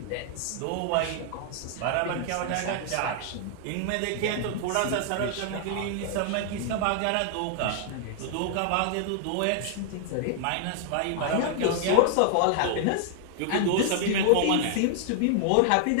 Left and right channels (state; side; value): different; both; correlation 0.00